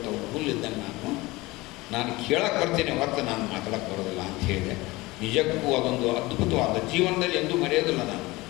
ಹುಲ್ಲಿದ್ದಂಗೆ ನಾನು ಕೇಳಕ್ಕೆ ಬರ್ತೀನಿ ಹೊರತು ನಾನು ಮಾತಾಡೋಕ್ಕೆ ಬರೋದಿಲ್ಲ ಅಂತ ಹೇಳಿದೆ. ನಿಜಕ್ಕೂ ಅದೊಂದು ಅದ್ಭುತವಾದ ಜೀವನದಲ್ಲಿ ಎಂದೂ ಮರೆಯೋದಿಲ್ಲ. ನಾನು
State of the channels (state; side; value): quieter; right; 21.1 dB